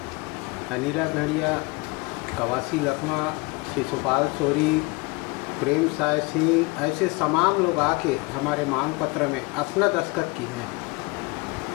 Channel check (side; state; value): right; quieter; 26.3 dB